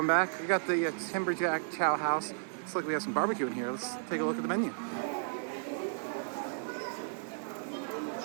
back, we got the Timberjack Chow House. Looks like we have some barbecue in here. Let's take a look at the menu.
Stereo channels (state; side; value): silent; left; 55 dB below the other